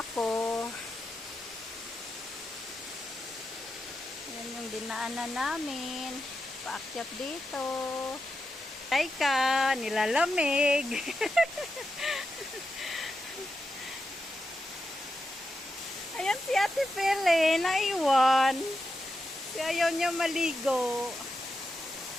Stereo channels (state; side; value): normal; both; correlation 0.88